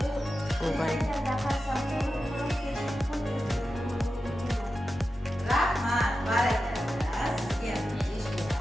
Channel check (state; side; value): normal; both; correlation 0.91